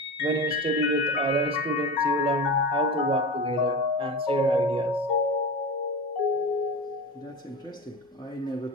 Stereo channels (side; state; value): both; normal; correlation 0.27